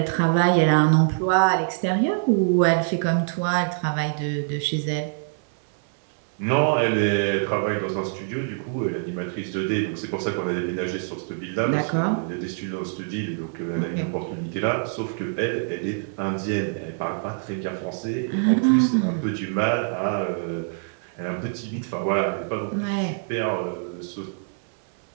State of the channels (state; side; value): silent; left; 62 dB below the other